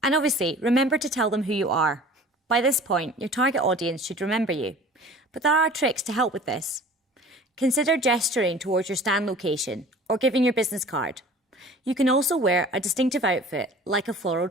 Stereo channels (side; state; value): both; normal; correlation 0.44